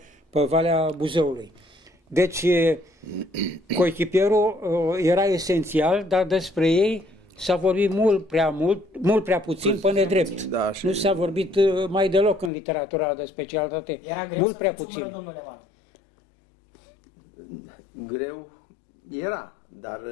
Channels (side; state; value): right; drops out; at 12.5 s